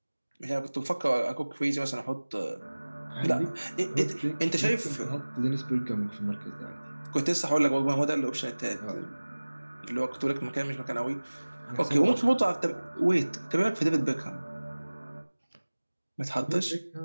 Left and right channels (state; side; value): inverted; both; correlation -1.00